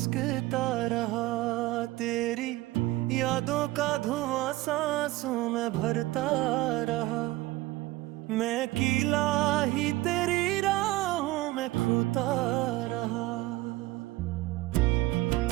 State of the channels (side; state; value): left; quieter; 18.5 dB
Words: रहा। तेरी यादों का धुआं सांसों में भरता रहा। मैं अकेला ही तेरी राहों में खोता रहा।